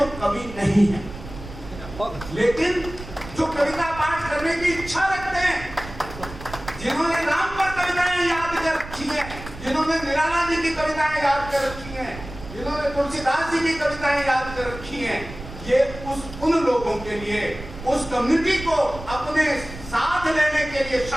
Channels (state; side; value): noise; right; rumble, 13 dB below the sound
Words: कवि नहीं है, लेकिन जो कविता पाठ करने की इच्छा रखते हैं, जिन्होंने राम पर कविताएं याद कर रखी है, जिन्होंने निराला जी की कविताएं याद कर रखी हैं, जिन्होंने तुलसीदास जी की कविताएं याद कर रखी हैं, ये उन लोगों के लिए, उस कम्युनिटी को अपने साथ लेने के लिए,